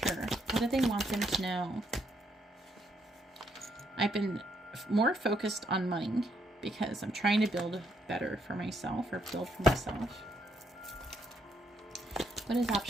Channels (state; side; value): normal; both; correlation 0.74